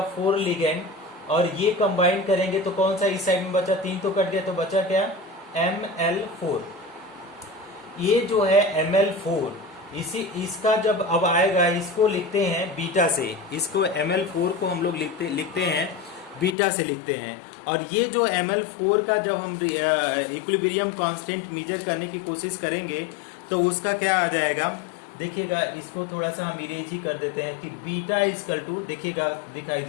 4 लिगेंड। और ये कंबाइन करेंगे तो कौन सा इस साइड में बचा, 3 तो कट गया, तो बचा क्या, ml4। ये जो है ml4, इसका जब अब आएगा, इसको लिखते हैं बीटा से। इसको ml4 को हम लोग लिखते हैं बीटा से लिखते हैं। और ये जो ml4 का जब हम इक्विलिब्रियम कांस्टेंट मेजर करने की कोशिश करेंगे तो उसका क्या आ जाएगा, देखिएगा। इसको थोड़ा सा हम इरेज ही कर देते हैं कि बीटा इजकल टू, देखिएगा दिखाई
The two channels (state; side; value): drops out; right; at 16.6 s